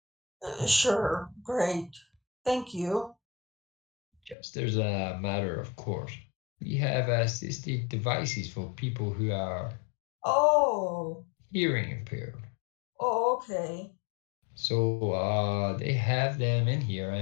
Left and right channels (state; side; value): drops out; right; at 4.4 s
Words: Sure, great. Thank you. Just as a matter of course, we have assistive devices for people who are hearing impaired. Oh, okay. So they have them in here,